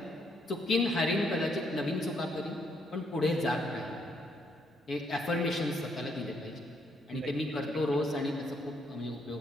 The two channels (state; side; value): normal; both; correlation 0.73